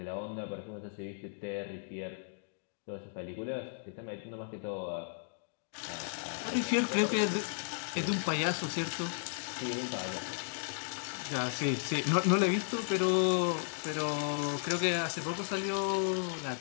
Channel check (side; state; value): right; silent; digital silence